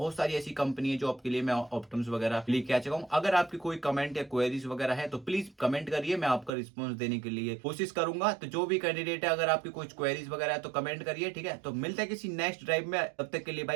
सारी ऐसी कंपनी है जो आपके लिए मैं ऑप्टम्स वगैरह लेके आ चुका हूँ। अगर आपकी कोई कमेंट या क्वेरीज वगैरह है तो प्लीज कमेंट करिए, मैं आपका रिस्पॉन्स देने के लिए कोशिश करूंगा। तो जो भी कैंडिडेट है अगर आपकी कुछ क्वेरीज वगैरह है तो कमेंट करिए, ठीक है। तो मिलते हैं किसी नेक्स्ट ड्राइव में, तब तक के लिए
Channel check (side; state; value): left; drops out; at 6.5 s